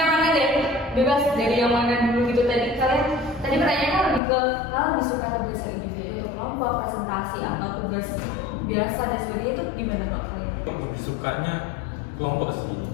mana deh? Bebas dari yang mana dulu gitu tadi. Kalian tadi pertanyaannya lebih ke kalian lebih suka tugas individu untuk kelompok, presentasi atau tugas biasa dan sebagainya itu gimana kalau kalian? Lebih sukanya kelompok sih.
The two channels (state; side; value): drops out; right; at 4.2 s